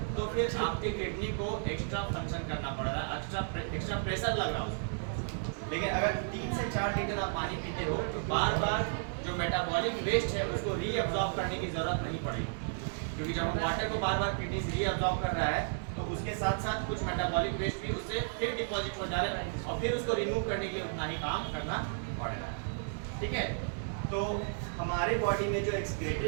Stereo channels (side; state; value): left; silent; digital silence